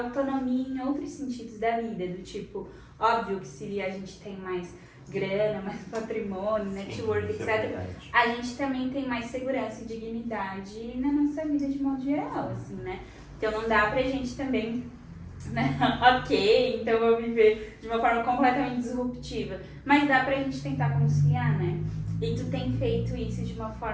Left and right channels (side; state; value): both; identical; correlation 1.00